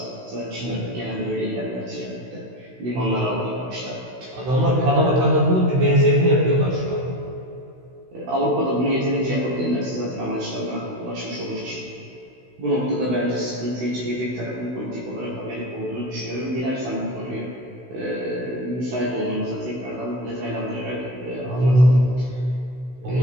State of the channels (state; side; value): late; left; 16 ms